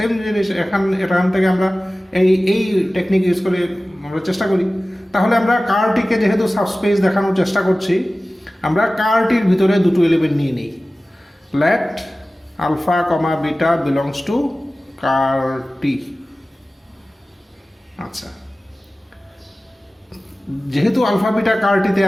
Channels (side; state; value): both; normal; correlation 0.97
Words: জিনিস এখান থেকে আমরা এই টেকনিক ইউজ করে আমরা চেষ্টা করি। তাহলে আমরা কারটিকে যেহেতু সাবস্পেস দেখানোর চেষ্টা করছি, আমরা কারটির ভিতরে দুটো এলিমেন্ট নিয়ে নিই। Let alpha comma beta belongs to ker T. আচ্ছা, যেহেতু আলফা বিটা কারটিতে